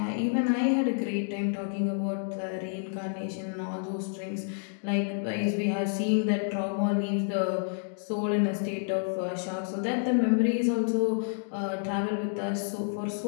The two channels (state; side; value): silent; right; digital silence